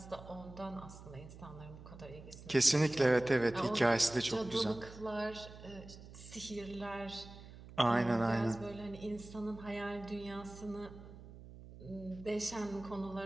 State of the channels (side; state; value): right; noise; hum, 16 dB below the sound